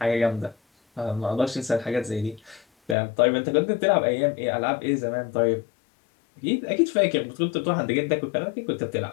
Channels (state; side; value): drops out; right; at 3.0 s